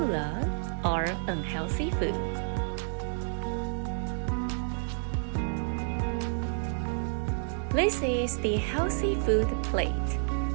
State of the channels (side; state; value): left; silent; 58 dB below the other